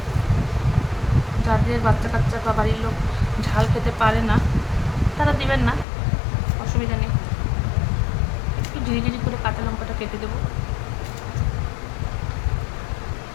যাদের বাচ্চা কাচ্চা বা বাড়ির লোক ঝাল খেতে পারে না তারা দিবেন না, অসুবিধা নেই। একটু ঝিরিঝিরি করে কাঁচা লঙ্কাটা কেটে দেবো।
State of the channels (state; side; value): drops out; right; at 5.9 s